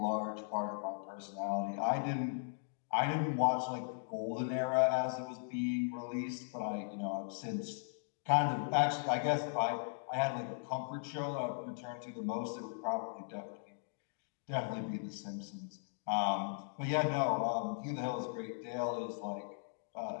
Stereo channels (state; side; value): silent; right; digital silence